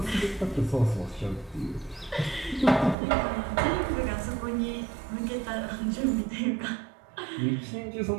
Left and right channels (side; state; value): left; drops out; at 3.0 s